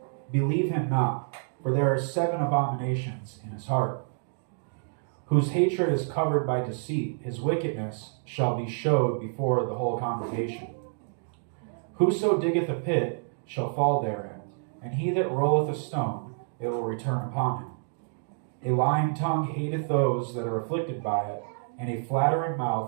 believe him not, for there are 7 abominations in his heart. Whose hatred is covered by deceit, his wickedness shall be showed before the whole congregation. Whoso diggeth a pit shall fall therein, and he that rolleth a stone, it will return upon him. A lying tongue hateth those that are afflicted by it, and a flattering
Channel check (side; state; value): left; silent; digital silence